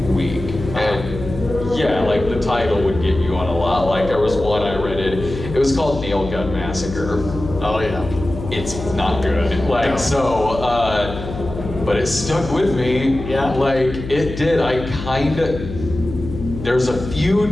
week. And yeah, like the title would get you on a lot. Like there was one I rented. It was called Nail Gun Massacre. Oh yeah. It's not good. Like but it stuck with me. Yeah. Like it did. There's a few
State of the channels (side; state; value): left; noise; hum, 9 dB below the sound